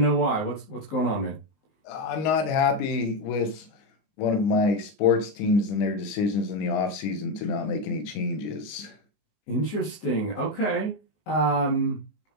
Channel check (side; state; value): right; late; 19 ms